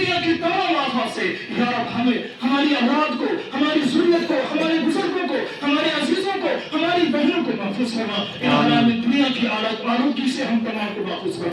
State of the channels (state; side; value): identical; both; correlation 1.00